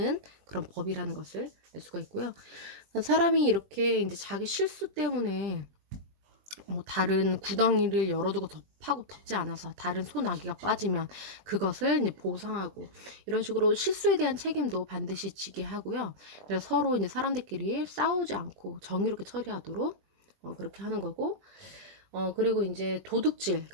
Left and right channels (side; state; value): left; late; 20 ms